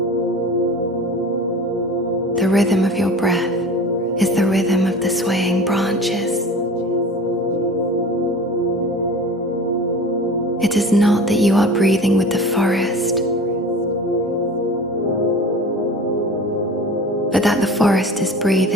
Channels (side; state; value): both; normal; correlation 0.37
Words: The rhythm of your breath is the rhythm of the swaying branches. It is not that you are breathing with the forest, but that the forest is